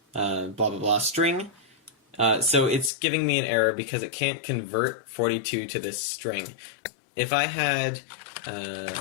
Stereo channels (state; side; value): drops out; right; at 2.9 s